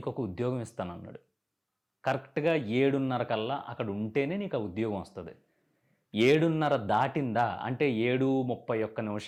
ఒక ఉద్యోగం ఇస్తానన్నాడు. కరెక్ట్గా 7:30 కల్లా అక్కడ ఉంటేనే నీకు ఆ ఉద్యోగం వస్తుంది. 7:30 దాటిందా అంటే 7:31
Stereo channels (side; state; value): both; identical; correlation 1.00